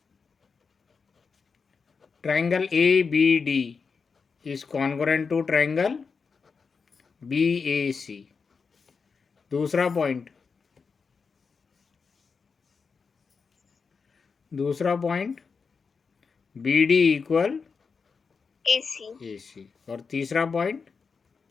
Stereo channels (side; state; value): right; quieter; 5.2 dB